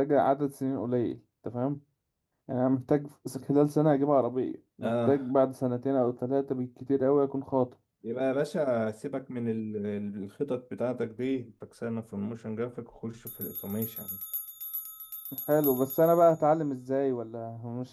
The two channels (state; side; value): identical; both; correlation 1.00